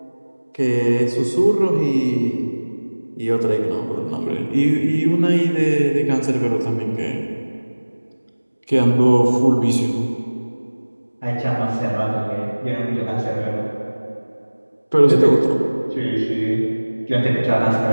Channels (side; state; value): both; inverted; correlation -1.00